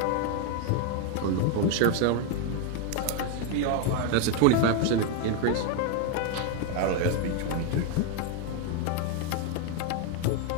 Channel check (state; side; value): different; both; correlation 0.01